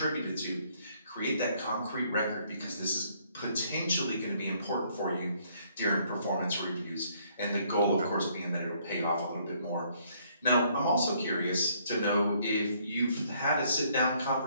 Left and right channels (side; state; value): both; inverted; correlation -0.66